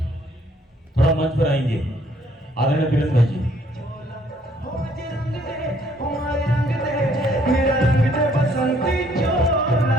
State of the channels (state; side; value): normal; both; correlation 0.64